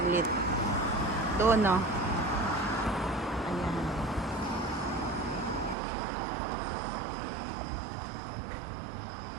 Doon, no? Ayan.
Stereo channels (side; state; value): left; drops out; at 5.8 s